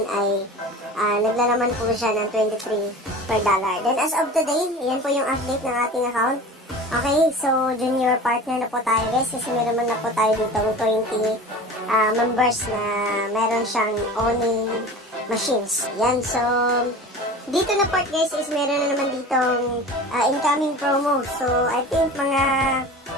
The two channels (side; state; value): both; normal; correlation 0.36